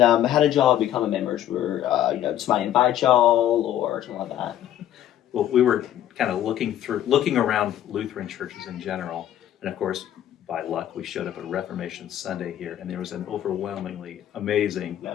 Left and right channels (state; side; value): quieter; right; 11.7 dB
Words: how did y'all become members? Were somebody invite y'all or something like that? Well, we were kind of looking around Lutheran churches in general, and of course, by luck, we showed up at Reformation Sunday here, and there was an overwhelmingly amazing